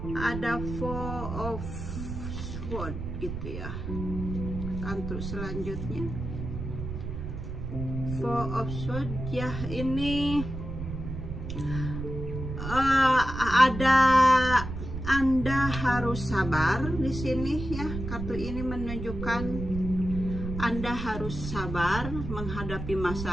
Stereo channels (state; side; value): noise; right; rumble, 6 dB below the sound